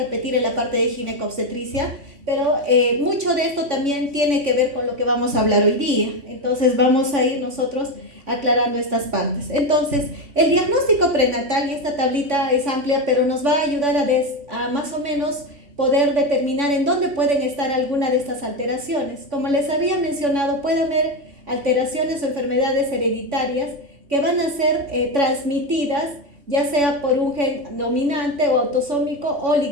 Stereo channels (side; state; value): left; late; 3.5 ms